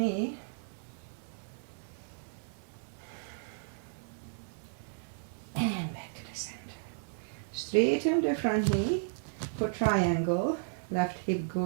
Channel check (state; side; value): silent; left; 55 dB below the other